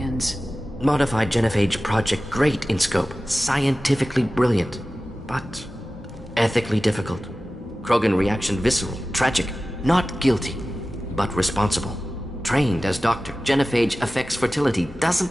Modified genophage project great in scope. Scientifically brilliant. but ethically difficult. Krogan reaction visceral, tragic, not guilty, but responsible. Trained as doctor, genophage affects fertility,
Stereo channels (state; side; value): normal; both; correlation 0.95